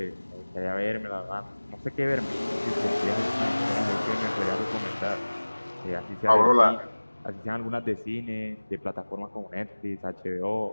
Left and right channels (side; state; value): both; inverted; correlation -1.00